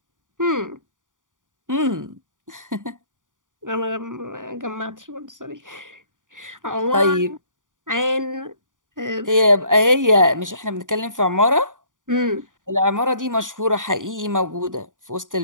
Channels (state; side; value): late; left; 0.88 ms